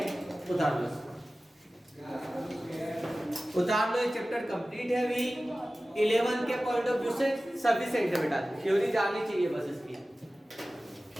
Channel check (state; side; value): normal; both; correlation 0.96